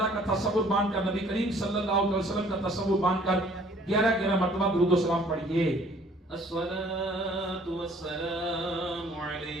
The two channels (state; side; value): normal; both; correlation 0.57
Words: کا تصور باندھ کر نبی کریم صلی اللہ علیہ وسلم کا تصور باندھ کر 11 مرتبہ درود و سلام پڑھیے۔ الصلاة والسلام